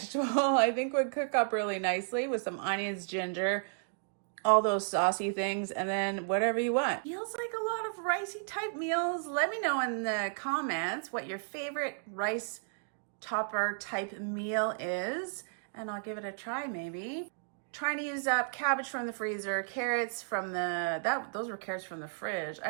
I think would cook up really nicely with some onions, ginger, all those saucy things, and then whatever you want. Feels like a lot of ricey type meals. Let me know in the comments what your favorite rice topper type meal is, and I'll give it a try maybe. Trying to use up cabbage from the freezer, carrots from those were carrots from the fridge. I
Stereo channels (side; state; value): left; silent; digital silence